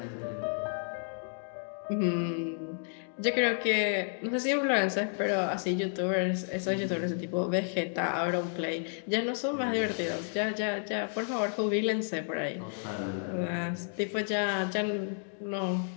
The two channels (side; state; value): right; silent; 57 dB below the other